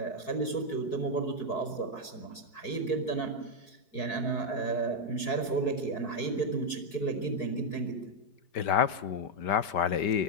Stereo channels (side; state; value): right; late; 4.6 ms